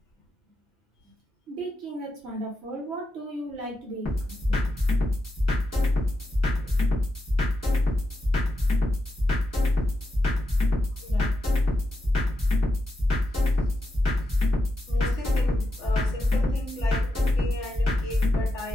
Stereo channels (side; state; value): both; normal; correlation 0.87